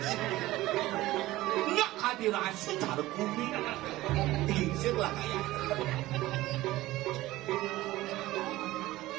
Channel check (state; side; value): quieter; left; 17.3 dB